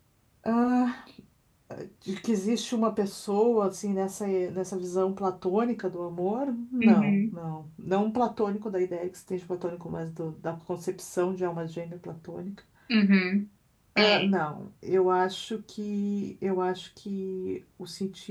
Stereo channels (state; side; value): identical; both; correlation 1.00